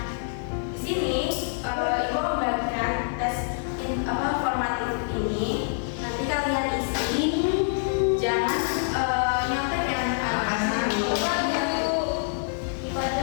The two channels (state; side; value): silent; right; 61 dB below the other